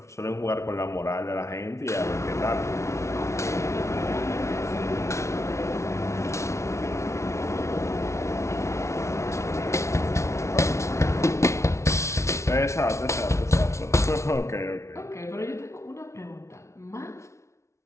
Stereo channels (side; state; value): right; late; 0.13 ms